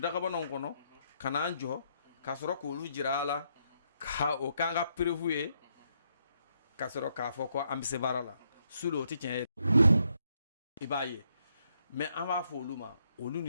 kɔnɔ ka n'an jɔ ka sɔrɔ k'olu jira a la ka o k'an ka preuve ye ka sɔrɔ k'a fɔ ko an bɛ se baara la sudo o tɛ tiɲɛ ye i b'a ye mais an b'a fɔ olu ma olu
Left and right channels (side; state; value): both; inverted; correlation -0.76